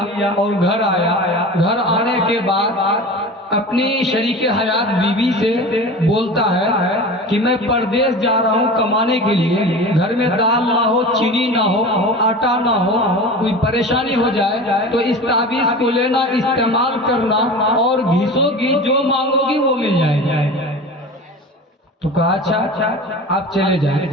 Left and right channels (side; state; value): both; normal; correlation 0.34